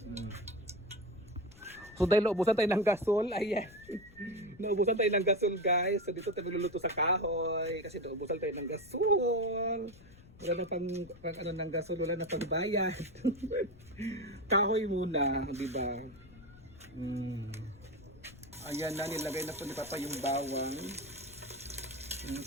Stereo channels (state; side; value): noise; left; rumble, 21 dB below the sound